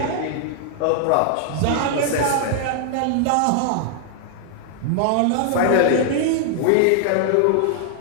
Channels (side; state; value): both; different; correlation 0.00